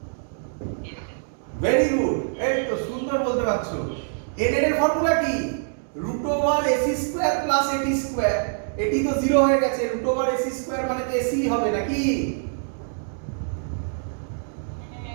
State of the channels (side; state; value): left; silent; digital silence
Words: ভেরি গুড, এই তো সুন্দর বলতে পারছো। এ নেট এর ফর্মুলা কি? Root over AC square plus এটি স্কয়ার। এটি তো জিরো হয়ে গেছে, রুট ওভার এসি স্কয়ার মানে তো এসি হবে নাকি?